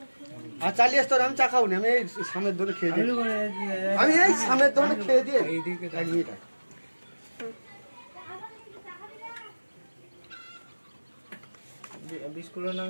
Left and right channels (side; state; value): both; inverted; correlation -1.00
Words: আর চালিয়ে তোর আমি চা খাবো না, আমি এই সামনের দোকানে খেয়ে দিই, আমি এই সামনের দোকানে খেয়ে দিয়ে এইদিকে এক মিনিট বিস্কুটের নাম